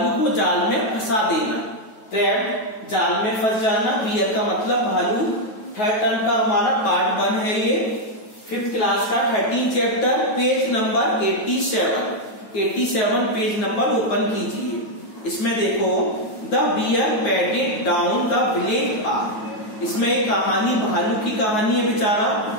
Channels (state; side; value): late; right; 9.5 ms